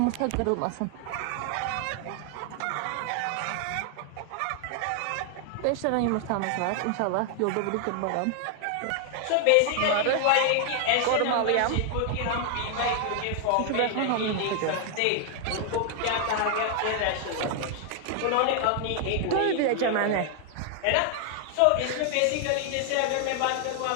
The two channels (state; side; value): different; both; correlation 0.00